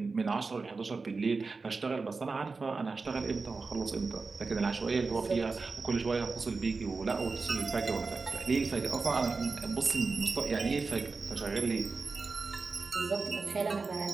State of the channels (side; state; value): left; quieter; 4.2 dB